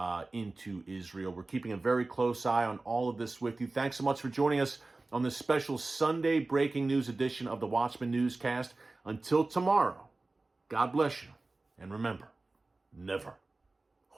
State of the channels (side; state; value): left; quieter; 3.2 dB